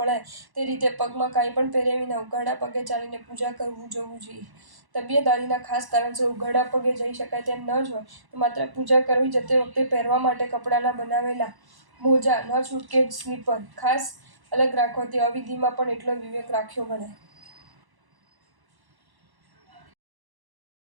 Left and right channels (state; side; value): late; left; 1.1 ms